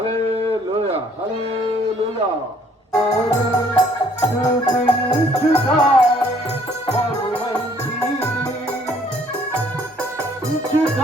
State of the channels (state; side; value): normal; both; correlation 0.62